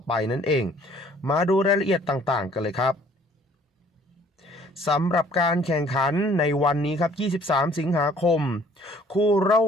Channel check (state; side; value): normal; both; correlation 0.57